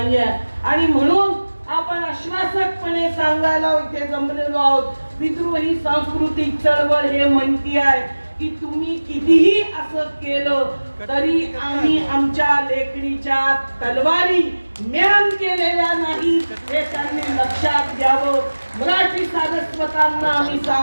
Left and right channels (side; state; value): both; inverted; correlation -1.00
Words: आणि म्हणून आपण आश्वासकपणे सांगायला इथे जमलेलो आहोत, विद्रोही सांस्कृतिक चळवळ हे म्हणती आहे की तुम्ही कितीही असं केलं तरी आम्ही आमच्या लेखणीच्या तलवारी म्यान केलेल्या नाही हे त्यांनी लक्षात घ्यावं. मराठी सारस्वतांना आम्ही